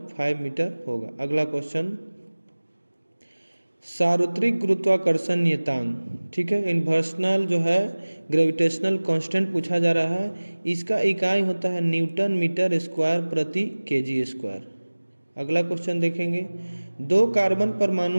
मीटर होगा। अगला क्वेश्चन, सार्वत्रिक गुरुत्वाकर्षण नियतांक, ठीक है, इन्वर्सनल जो है ग्रेविटेशनल कांस्टेंट पूछा जा रहा है। इसका इकाई होता है न्यूटन मीटर स्क्वायर प्रति केजी स्क्वायर। अगला क्वेश्चन देखेंगे, 2 कार्बन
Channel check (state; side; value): inverted; both; correlation -1.00